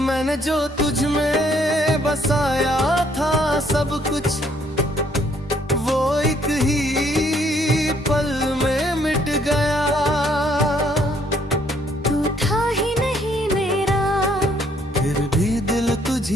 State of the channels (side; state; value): both; normal; correlation 0.66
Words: मैंने जो तुझ में बसाया था सब कुछ, वो एक ही पल में मिट गया। तू था ही नहीं मेरा, फिर भी दिल